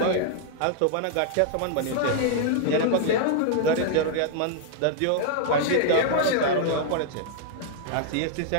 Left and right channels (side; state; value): both; different; correlation -0.01